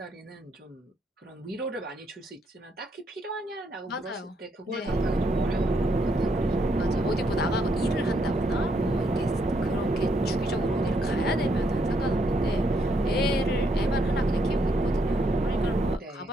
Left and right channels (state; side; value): normal; both; correlation 0.75